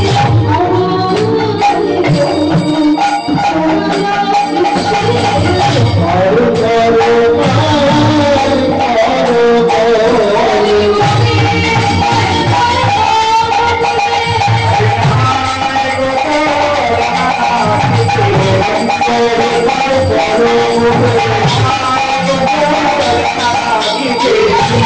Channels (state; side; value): identical; both; correlation 1.00